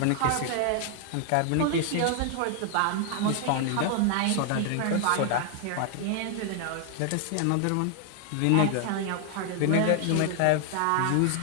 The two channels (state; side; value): different; both; correlation 0.00